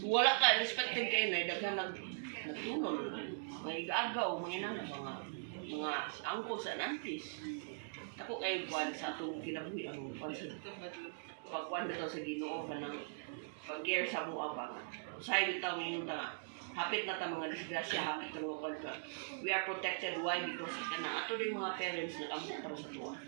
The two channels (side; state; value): left; silent; digital silence